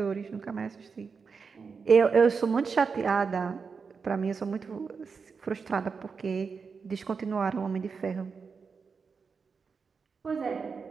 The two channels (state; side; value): quieter; left; 5.3 dB